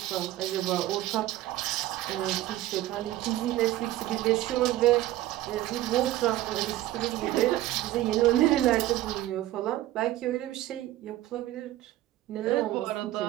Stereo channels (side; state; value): left; quieter; 15.1 dB